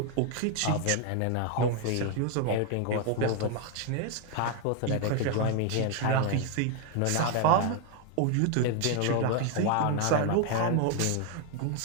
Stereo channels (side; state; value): both; different; correlation 0.01